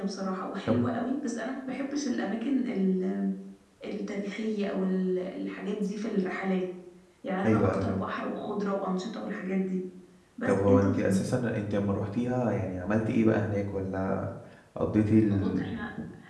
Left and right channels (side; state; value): both; identical; correlation 1.00